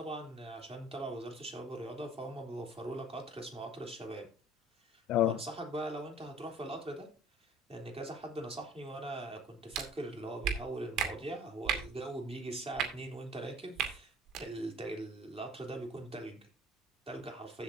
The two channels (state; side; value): normal; both; correlation 0.49